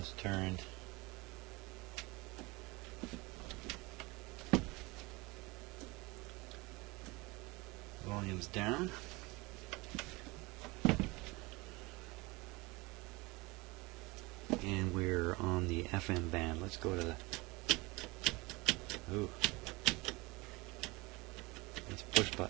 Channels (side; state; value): left; quieter; 24.0 dB